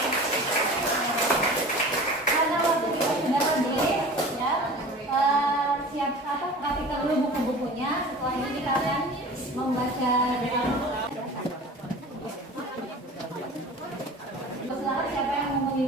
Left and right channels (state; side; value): normal; both; correlation 0.39